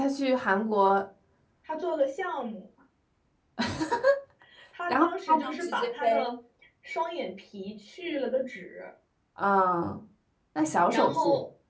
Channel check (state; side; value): identical; both; correlation 1.00